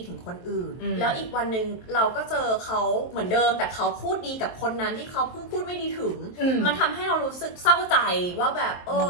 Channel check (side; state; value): right; late; 23 ms